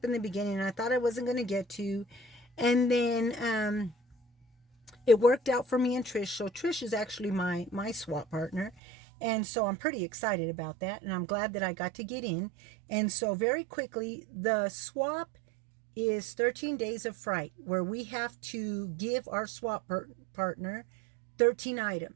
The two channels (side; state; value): left; drops out; at 8.8 s